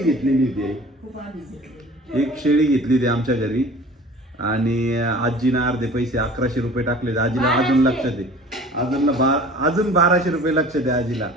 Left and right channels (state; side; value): normal; both; correlation 0.45